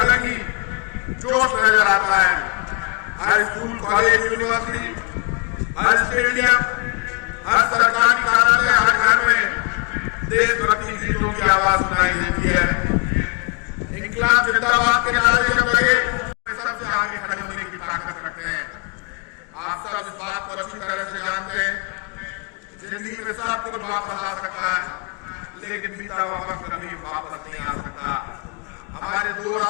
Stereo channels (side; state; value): right; quieter; 32.6 dB